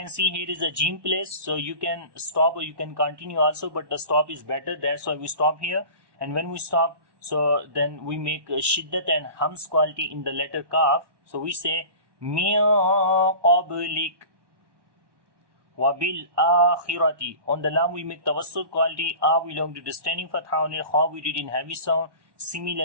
see here is a jim place, so you can stop or you can continue also, but the stop is better. That's why we stop here. And when we stop, so then we make shiddat and hams quality in the letter kaf. So we say min qablik wabil akhirati. On the lam we make tawassut quality. A we long to the standing fatha on it. Kha we read in heavy sound.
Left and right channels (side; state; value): left; late; 1.1 ms